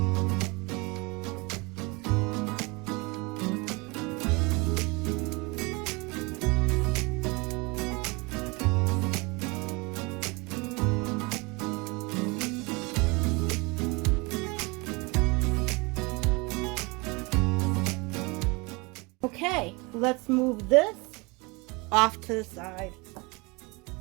Okay, let's move this off to the side.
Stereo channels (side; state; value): left; quieter; 27.1 dB